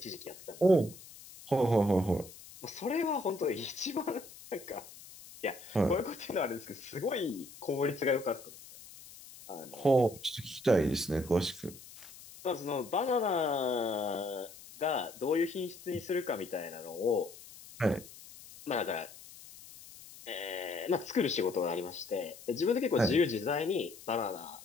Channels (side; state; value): left; noise; hiss, 18 dB below the sound